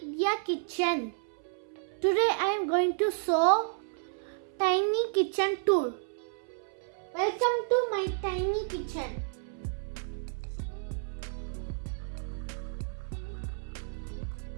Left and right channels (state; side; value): silent; left; 57 dB below the other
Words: Today I am going to show tiny kitchen tour. Welcome to my tiny kitchen.